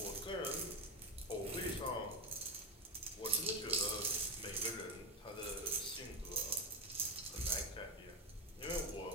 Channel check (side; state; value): both; normal; correlation 0.12